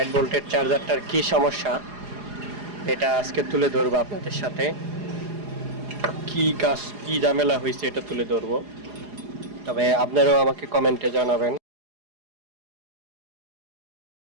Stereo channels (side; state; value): left; late; 4.8 ms